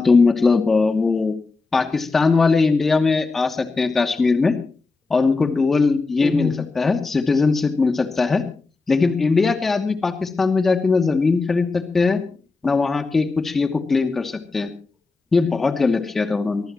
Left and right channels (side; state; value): right; quieter; 3.9 dB